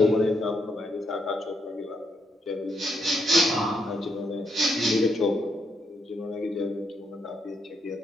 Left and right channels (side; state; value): both; normal; correlation 0.77